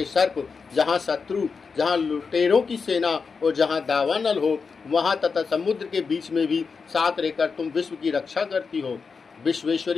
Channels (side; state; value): right; quieter; 5.2 dB